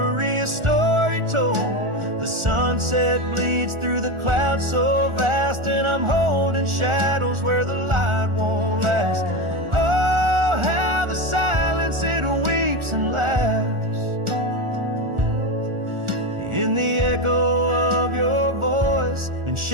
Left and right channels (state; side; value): late; left; 1.4 ms